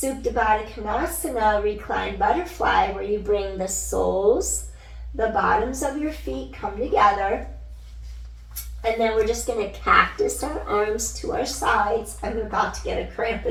Baddha Konasana, reclined butterfly, where you bring the soles, the bottoms of your feet come together. And then we're just going to cactus our arms to our sides. I'm about to get a cramp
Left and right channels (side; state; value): both; identical; correlation 1.00